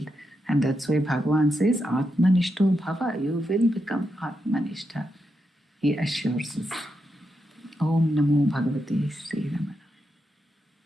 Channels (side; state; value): both; normal; correlation 0.85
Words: And that's why Bhagavan says, Atmanishto Bhava, you will become Atmanishta. He assures us. Om Namo Bhagavate Sri Ramana.